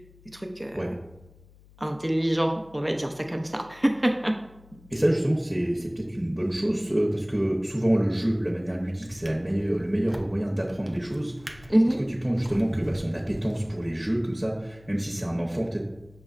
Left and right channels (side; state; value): left; noise; hum, 25 dB below the sound